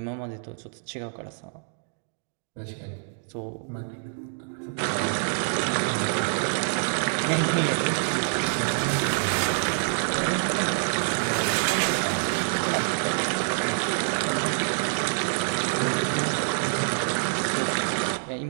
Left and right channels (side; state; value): left; silent; digital silence